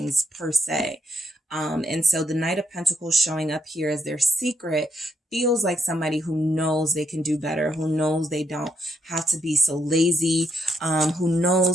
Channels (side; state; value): both; normal; correlation 0.78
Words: per se. And so the Knight of Pentacles showing up here as their secret feels like somebody who knows they can do better, who knows they don't have to be so lazy, who